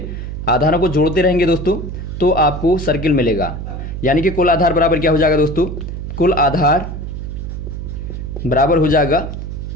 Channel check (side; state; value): right; noise; hum, 7 dB below the sound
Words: आधारों को जोड़ते रहेंगे दोस्तों तो आपको सर्कल मिलेगा। यानी कि कुल आधार बराबर क्या हो जाएगा दोस्तों? कुल आधार बराबर हो जाएगा